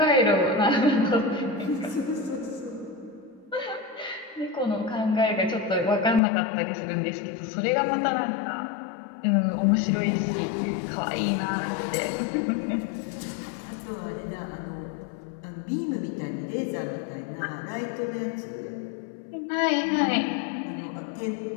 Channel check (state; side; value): drops out; right; at 6.2 s